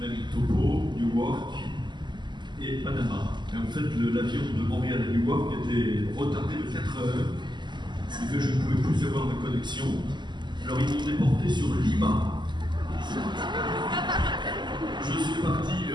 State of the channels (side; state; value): left; late; 0.21 ms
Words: Newark et Panama. Et en fait, l'avion de Montréal à Newark était retardé de 4 heures, ce qui fait que je ne pouvais plus avoir de connexion. Alors ils m'ont déporté sur Lima. Je suis parti